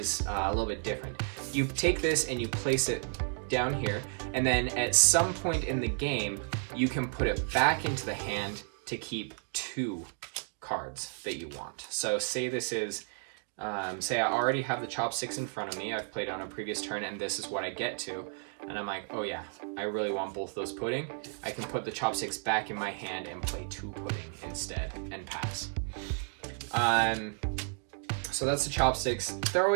a little bit different. You take this and you place it down here, and then at some point in the game, you can put it back into the hand to keep 2 cards that you want. So say this is, say I already have the chopsticks in front of me, I've played on a previous turn, and this is what I get to, and I'm like, oh yeah, I really want both those pudding. I can put the chopsticks back in my hand and play 2 pudding instead and pass. So that's the chopsticks. They're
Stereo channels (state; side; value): silent; left; 56 dB below the other